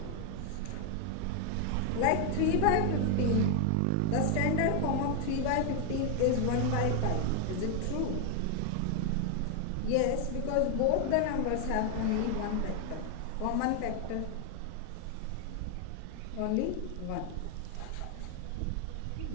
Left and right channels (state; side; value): different; both; correlation 0.01